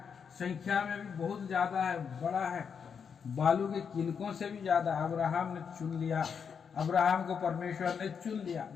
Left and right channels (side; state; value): right; quieter; 6.7 dB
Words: संख्या में भी बहुत ज्यादा है, बड़ा है, बालू के किनकों से भी ज्यादा। अब्राहम ने चुन लिया, अब्राहम को परमेश्वर ने चुन लिया,